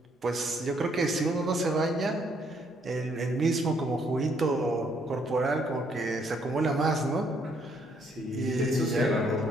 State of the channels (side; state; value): both; normal; correlation 0.69